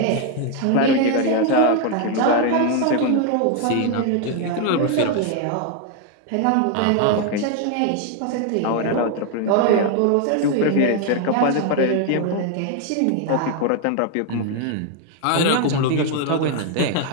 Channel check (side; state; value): both; different; correlation 0.00